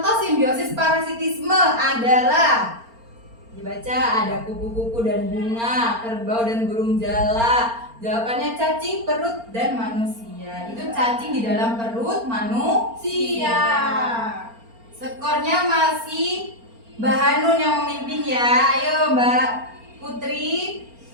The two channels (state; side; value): late; left; 4.3 ms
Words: simbiosis parasitisme adalah, dibaca, ada kupu-kupu dan bunga, kerbau dan burung jala. Jawabannya cacing, perut, dan manusia. Itu cacing di dalam perut manusia. Skornya masih Mbak Hanun yang memimpin ya. Ayo Mbak Putri.